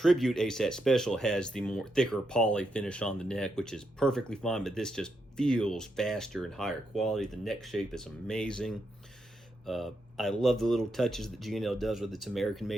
ASAT Special has the more thicker poly finish on the neck, which is perfectly fine, but this just feels faster and higher quality. The neck shape is amazing. I love the little touches that G&L does with its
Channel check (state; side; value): normal; both; correlation 0.82